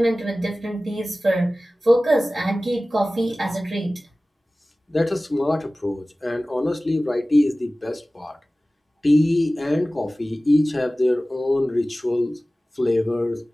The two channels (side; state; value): both; normal; correlation 0.97